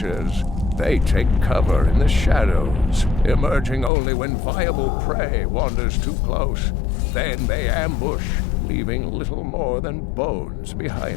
They take cover in the shadows, emerging only when viable prey wanders too close. Then they ambush, leaving little more than bones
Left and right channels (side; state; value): right; drops out; at 3.9 s